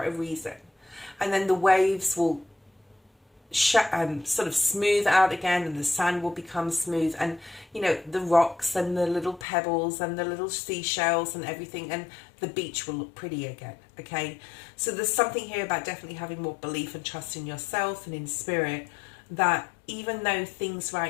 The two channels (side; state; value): right; drops out; at 9.5 s